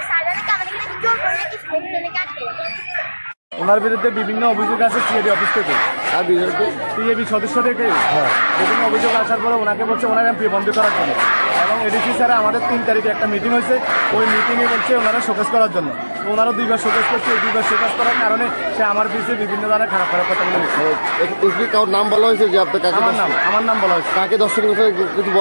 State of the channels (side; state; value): both; inverted; correlation -1.00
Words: স্যারদেরকে আমাদেরকে জোর করে নাকি স্কুল থেকে কাটবে। ওনার বিরুদ্ধে বিভিন্ন অভিযোগ আছে সিএবি অফিস থেকে, আর সিএবি সদস্য থেকে বিভিন্ন অভিযোগ আসার পরে ওনাকে বলছে ওনার এমপি বন্ধ করার জন্য। এবং এডিসি স্যারে আমাদের 3 তারিখে একটা মিটিং হয়েছে, ওই মিটিংয়ে বলছে ওনারা শোকেস করার জন্য। তো ওনারা 2বার শোকেস করছে, এই 2বার শোকেস করার কারণে সে আমার পিছিয়ে বিভিন্ন ধরনের খারাপ কথা বলে দিচ্ছে। কারোর নাম বলা হয়েছে যে আপনার কাকে? আমার নাম বলা হয়েছে। কাকে দর্শন কিছু